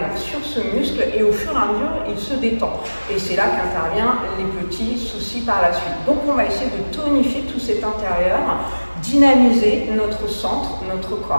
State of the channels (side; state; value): both; inverted; correlation -1.00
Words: sur ce muscle et au fur et à mesure, il se détend. Et c'est là qu'interviennent les petits soucis par la suite. Donc on va essayer de tonifier tout cet intérieur, dynamiser notre centre, notre